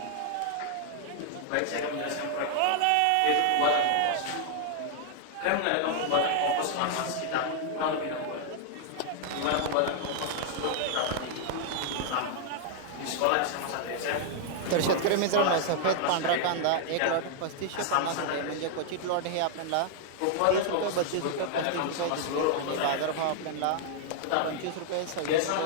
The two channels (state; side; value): different; both; correlation 0.00